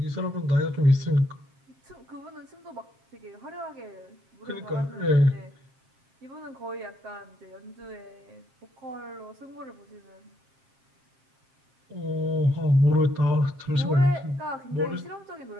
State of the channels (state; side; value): late; left; 7.5 ms